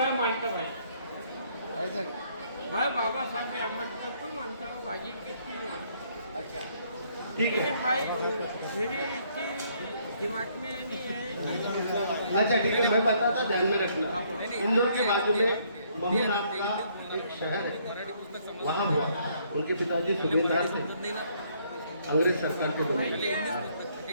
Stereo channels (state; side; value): inverted; both; correlation -0.67